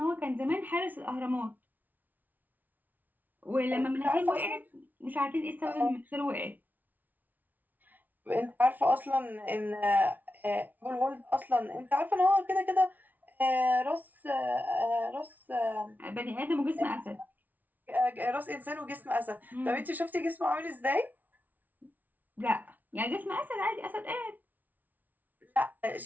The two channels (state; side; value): late; left; 0.080 ms